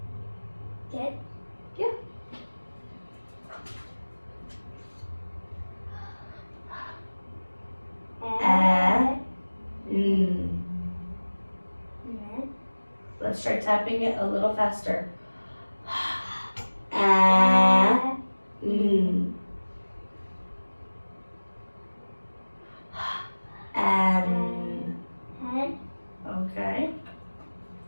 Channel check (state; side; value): inverted; both; correlation -1.00